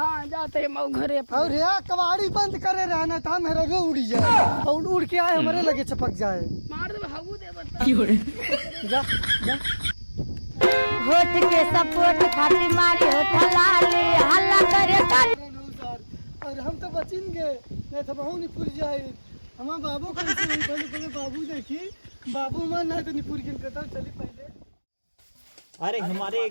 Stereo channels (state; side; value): inverted; both; correlation -1.00